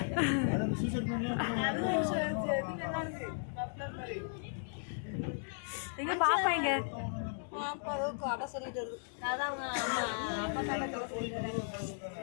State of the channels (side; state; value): right; silent; digital silence